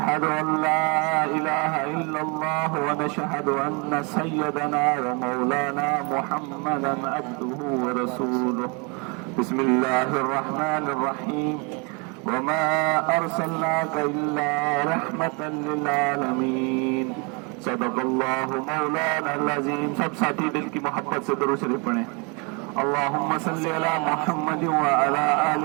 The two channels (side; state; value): left; quieter; 32.5 dB